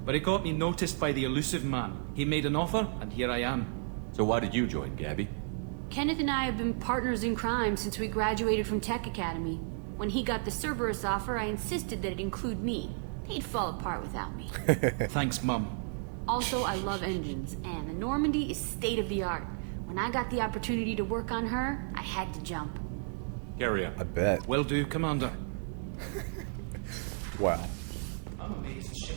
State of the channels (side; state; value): left; silent; 56 dB below the other